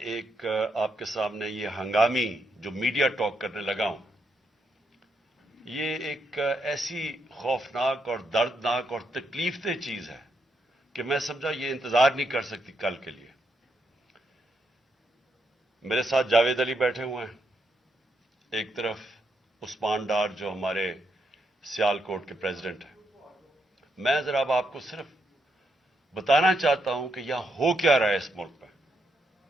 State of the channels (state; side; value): normal; both; correlation 0.80